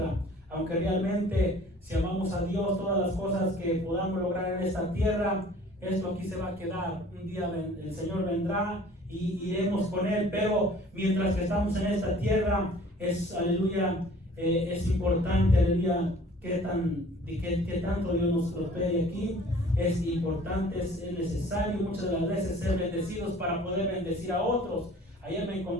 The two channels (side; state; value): both; normal; correlation 0.50